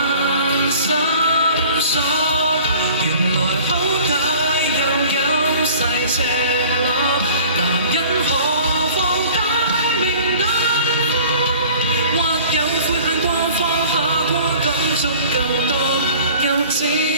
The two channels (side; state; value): both; inverted; correlation -0.46